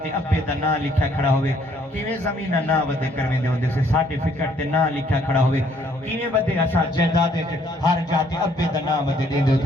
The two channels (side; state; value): both; normal; correlation 0.64